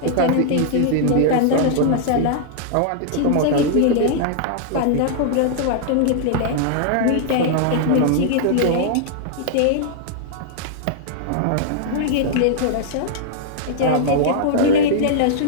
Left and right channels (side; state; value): both; different; correlation -0.01